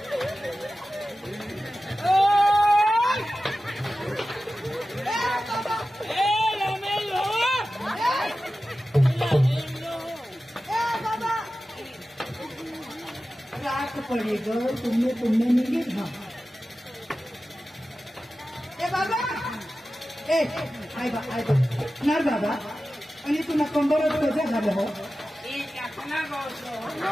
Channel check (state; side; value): normal; both; correlation 0.94